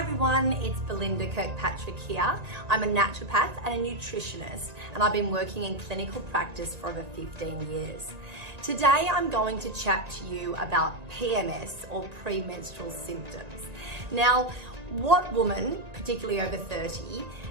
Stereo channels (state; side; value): late; left; 1.9 ms